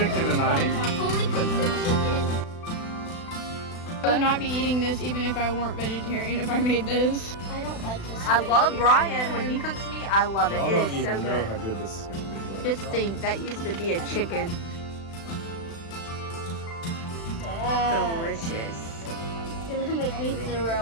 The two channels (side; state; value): right; late; 36 ms